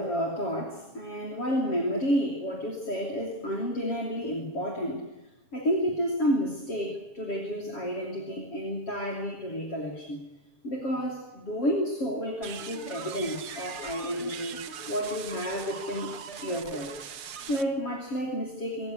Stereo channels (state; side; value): late; right; 7.3 ms